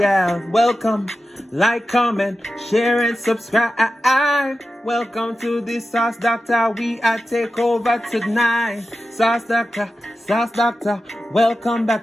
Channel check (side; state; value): both; normal; correlation 0.92